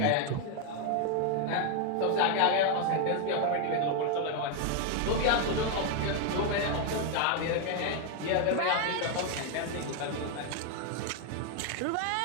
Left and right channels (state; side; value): different; both; correlation 0.01